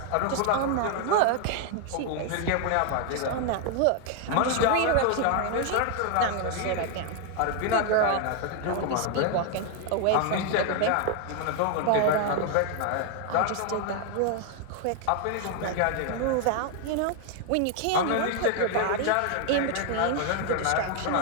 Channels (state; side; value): different; both; correlation 0.01